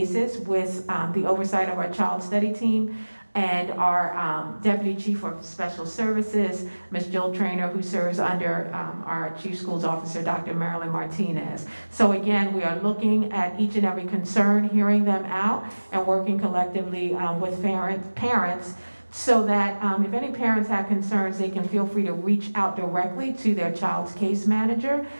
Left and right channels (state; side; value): inverted; both; correlation -1.00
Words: with the oversight of our child study team and our Deputy Chief of Special Services, Ms. Jill Traynor, who serves under our Chief Schools Officer, Dr. Marilyn Martinez. So again, we are looking at each and every concern, hearing them out, and working collectively with parents so that if any parents have concerns, they can feel free to reach out directly to their child's case manager,